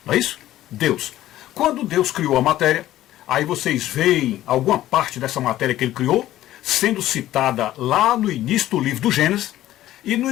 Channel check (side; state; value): right; quieter; 14.1 dB